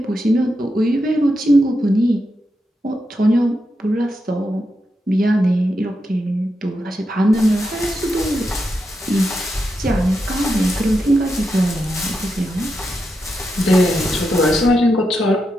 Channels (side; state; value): both; normal; correlation 0.86